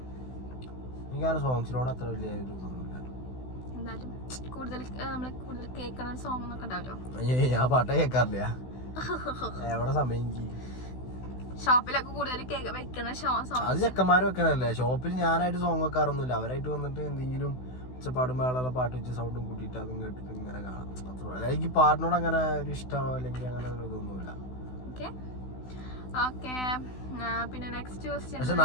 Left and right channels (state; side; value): late; right; 16 ms